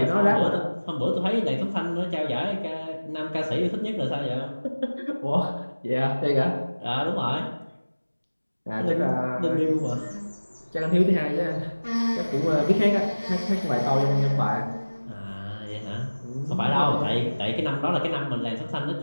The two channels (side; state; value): both; inverted; correlation -1.00